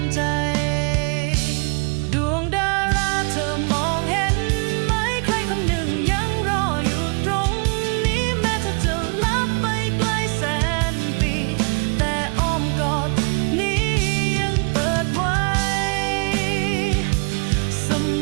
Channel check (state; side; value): quieter; left; 34.5 dB